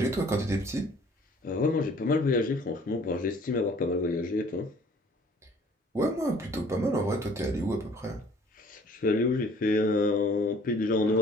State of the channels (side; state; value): both; normal; correlation 0.55